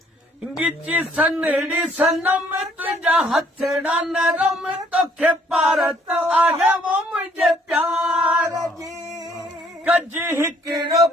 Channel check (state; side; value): normal; both; correlation 0.63